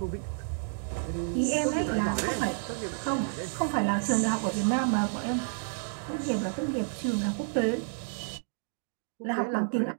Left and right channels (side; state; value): left; silent; digital silence